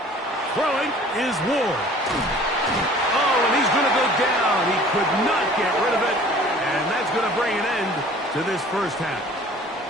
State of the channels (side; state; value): both; normal; correlation 0.49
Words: Throwing is Ward. Oh, and he's going to go down. He could not get rid of it, and that's going to bring an end to this first half.